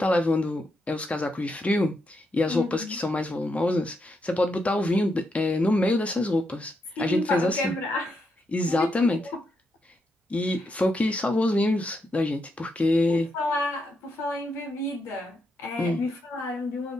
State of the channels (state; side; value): normal; both; correlation 0.81